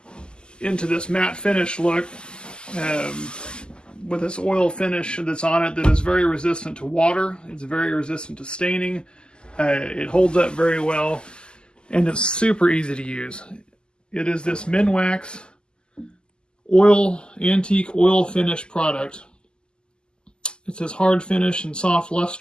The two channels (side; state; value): right; late; 0.048 ms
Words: into this matte finish look with this oil finish that's on it that is very resistant to water. It's very resistant to staining. It holds up very well. And it's super easy to use. It is this Minwax Antique Oil Finish product. It says hard finish and soft